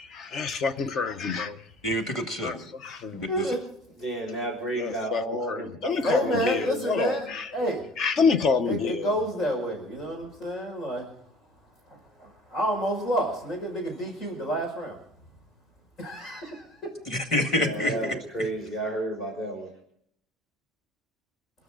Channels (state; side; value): normal; both; correlation 0.47